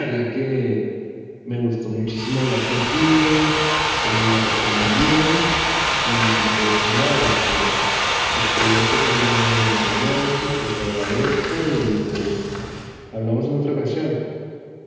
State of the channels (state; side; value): identical; both; correlation 1.00